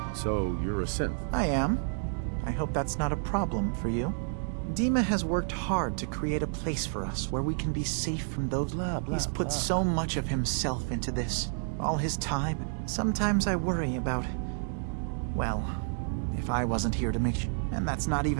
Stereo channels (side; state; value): left; silent; digital silence